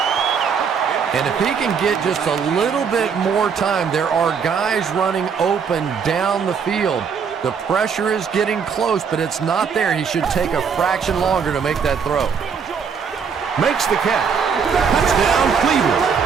And if he can get just a little bit more time, there are guys running open down the field. The pressure is getting close, but it's not there. He should take a fraction longer to make that throw. Makes the catch. Touchdown, Cleveland.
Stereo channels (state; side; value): quieter; left; 6.4 dB